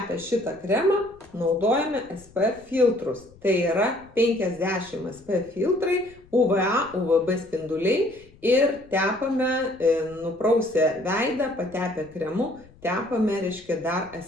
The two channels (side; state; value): left; noise; rumble, 26 dB below the sound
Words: šitą kremą naudojame SPF filtrus. Tai yra 50 SPF filtrai, UVA, UVB spinduliai. Ir tepame, nuprausę veidą, patepę kremu, tepame, reiškia, dar